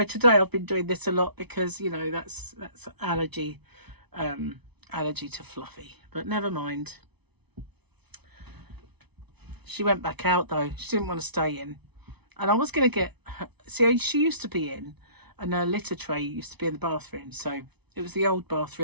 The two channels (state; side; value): late; left; 0.99 ms